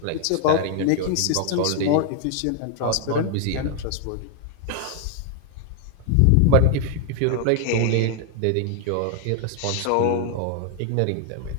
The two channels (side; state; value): both; different; correlation 0.00